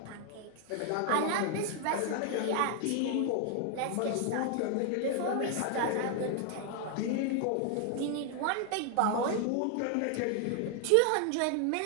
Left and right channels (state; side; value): different; both; correlation 0.00